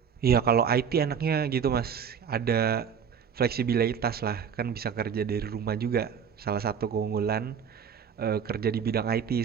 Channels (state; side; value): quieter; left; 7.3 dB